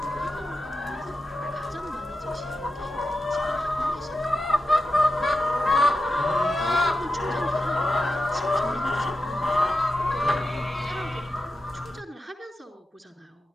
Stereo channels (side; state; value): both; normal; correlation 0.90